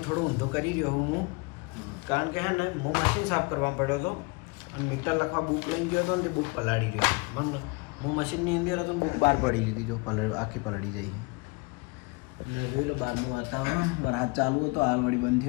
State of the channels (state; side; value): quieter; right; 28.2 dB